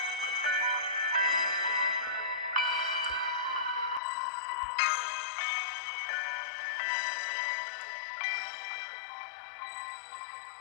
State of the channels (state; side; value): drops out; right; at 4.0 s